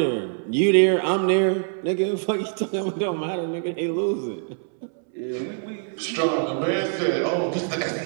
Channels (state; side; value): silent; left; 62 dB below the other